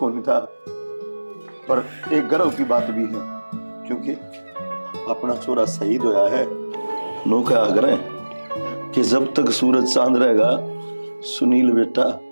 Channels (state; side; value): inverted; both; correlation -1.00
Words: नहीं था। पर एक गर्व की बात भी है, क्योंकि अपना छोरा शहीद होया है। नौका आग्रह कि जब तक सूरज चांद रहेगा सुनील बेटा